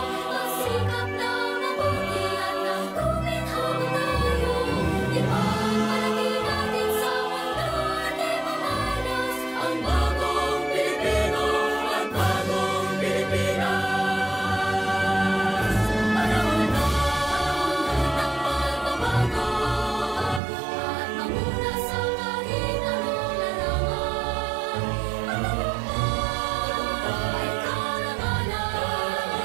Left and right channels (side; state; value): left; drops out; at 20.4 s